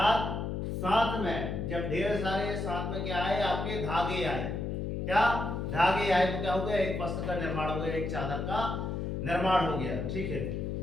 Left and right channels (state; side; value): noise; left; hum, 2 dB below the sound